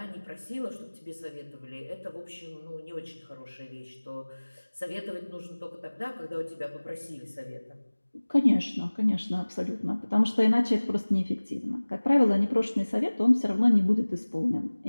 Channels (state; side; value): inverted; both; correlation -1.00